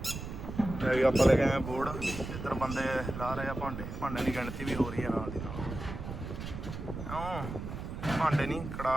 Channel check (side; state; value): right; noise; rumble, 7 dB below the sound